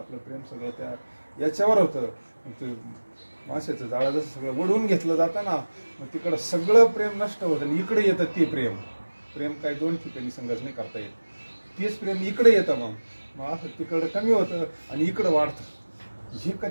प्रेम सगळं त्या याच्यावर होतं. ते माशाचं जाळं जसं सगळं ओढून घेतलं जातं ना, मग तिकडं सगळं प्रेम नष्ट होतं आणि इकडे येतं ते प्रेम. प्रेम काही दोन ठिकाणी संघर्ष नाही करता येत. तेच प्रेम इकडे येतं, मग असं तिकडं कमी होतं आणि इकडं वाढतं. हे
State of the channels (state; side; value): inverted; both; correlation -1.00